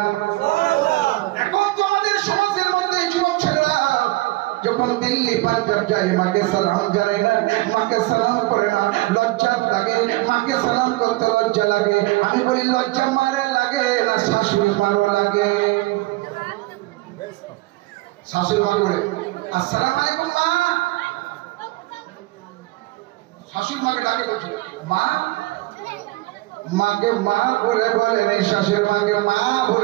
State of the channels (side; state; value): left; quieter; 19.9 dB